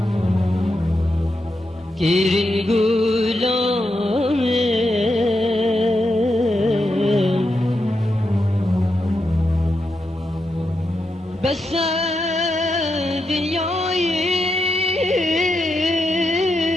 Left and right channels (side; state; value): both; normal; correlation 0.85